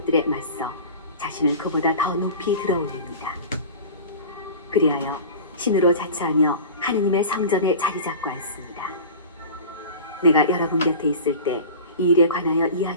맞서 자신을 그보다 더 높이 들어올립니다. 그리하여 신으로 자처하며 하느님의 성전에 자리 잡고 앉습니다. 내가 여러분 곁에 있을 때 이 일에 관하여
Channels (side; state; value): both; inverted; correlation -0.35